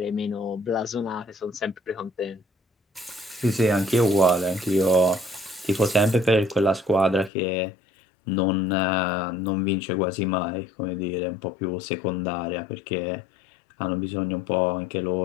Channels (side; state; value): right; drops out; at 7.3 s